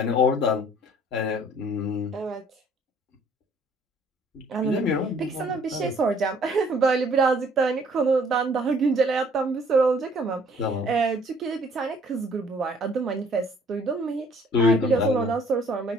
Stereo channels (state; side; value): normal; both; correlation 0.58